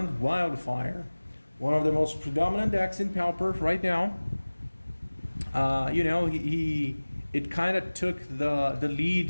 Wildfire, one of the most predominant decks in Pauper right now. It kind of took the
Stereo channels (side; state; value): both; inverted; correlation -1.00